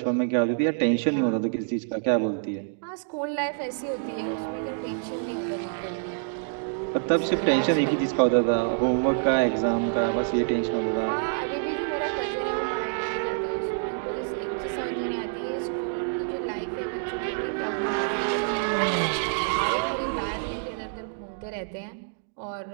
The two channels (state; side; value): silent; left; digital silence